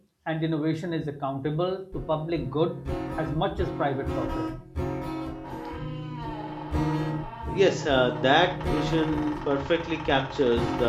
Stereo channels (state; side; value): identical; both; correlation 1.00